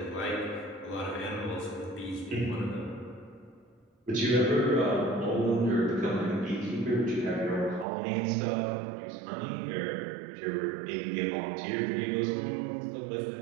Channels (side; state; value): left; drops out; at 7.9 s